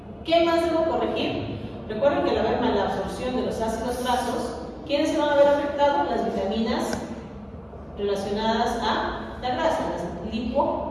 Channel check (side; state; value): both; identical; correlation 1.00